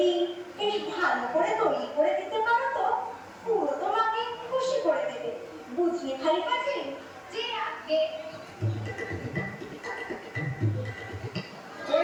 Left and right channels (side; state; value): both; identical; correlation 1.00